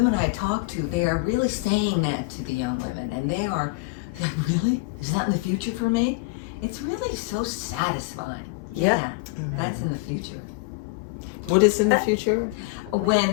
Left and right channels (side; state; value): right; quieter; 25.2 dB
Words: I talk to, they are really saying that to the young women, and they are, really? Is that in the future for me? It's really so satisfying. Yeah, that's in the future. What is in the future?